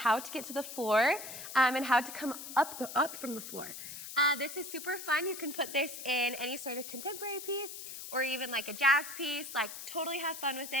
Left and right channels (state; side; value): noise; left; hiss, 10 dB below the sound